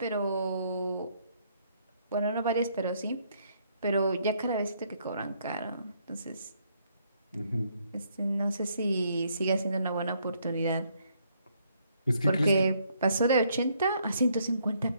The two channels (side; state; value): both; inverted; correlation -0.70